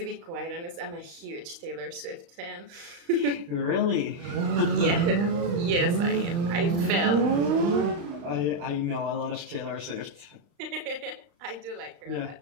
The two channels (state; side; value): late; left; 35 ms